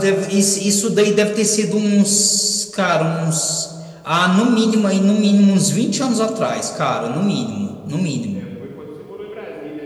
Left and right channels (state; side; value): identical; both; correlation 1.00